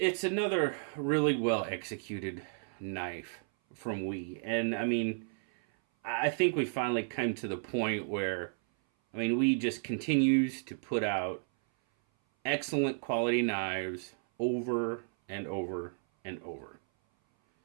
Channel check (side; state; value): left; silent; 56 dB below the other